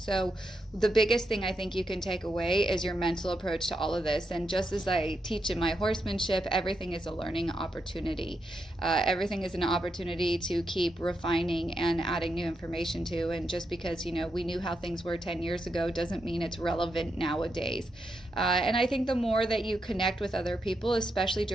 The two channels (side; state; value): both; normal; correlation 0.84